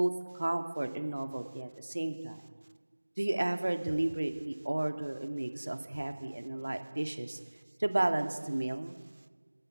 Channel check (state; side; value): inverted; both; correlation -1.00